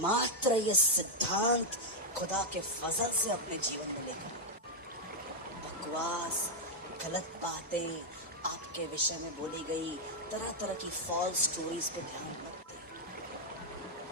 मात्र ये सिद्धांत खुदा के फजल से अपने जीवन में लेकर। बकवास, गलत बातें आपके विषय में बोली गई, तरह तरह की फॉल्स स्टोरीज पे ध्यान मत दें।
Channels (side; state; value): both; normal; correlation -0.01